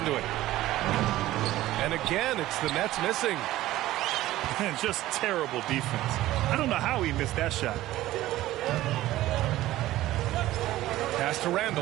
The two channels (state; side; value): quieter; left; 15.6 dB